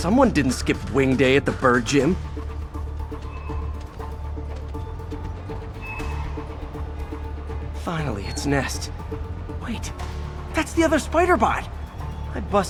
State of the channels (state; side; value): identical; both; correlation 1.00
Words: didn't skip wing day at the bird gym. Finally, its nest. Wait, that's the other spider bot. I